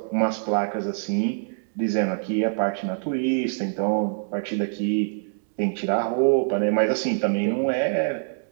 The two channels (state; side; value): silent; left; 62 dB below the other